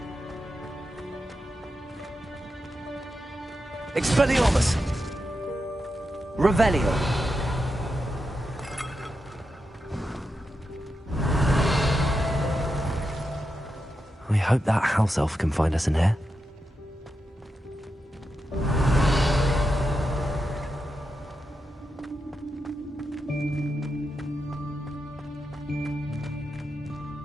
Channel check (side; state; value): both; normal; correlation 0.87